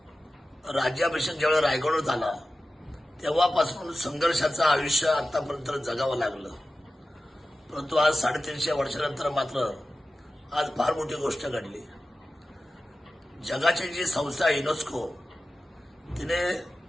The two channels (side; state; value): both; normal; correlation 0.94